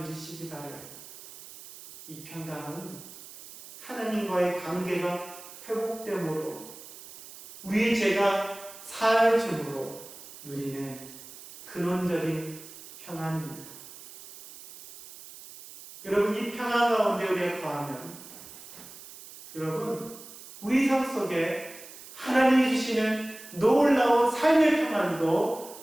누리시기 바라요. 이 평강은 하나님과의 관계가 회복됨으로 우리의 죄가 사해짐으로 누리는 근원적인 평안입니다. 여러분, 이 평안 가운데 우리가 거하면 여러분, 우리 삶 속에 하나님이 주시는 놀라운 삶의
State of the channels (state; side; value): noise; right; hiss, 16 dB below the sound